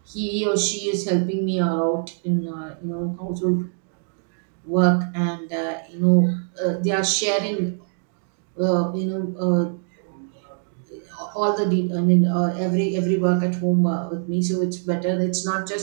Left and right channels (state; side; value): silent; left; digital silence